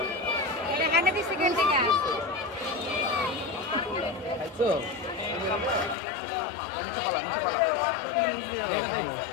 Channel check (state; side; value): drops out; right; at 6.0 s